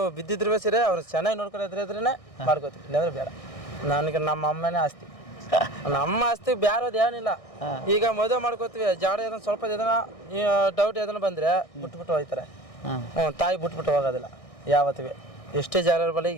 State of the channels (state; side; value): late; right; 1.6 ms